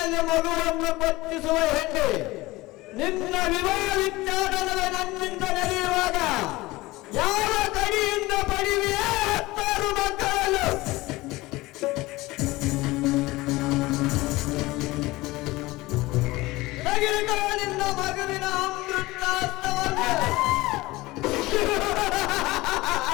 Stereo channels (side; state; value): right; quieter; 20.0 dB